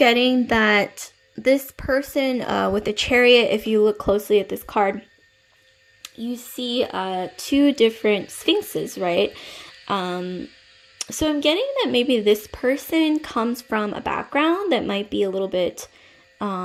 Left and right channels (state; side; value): identical; both; correlation 1.00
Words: that this person with the Chariot, if you look closely at this card, you see two different sphinxes, right? So I'm getting that maybe this person comes from a background that might be a little bit,